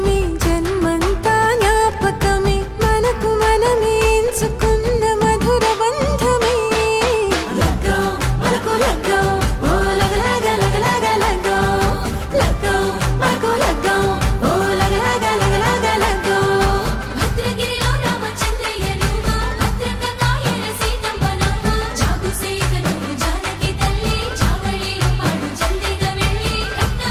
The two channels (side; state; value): both; identical; correlation 1.00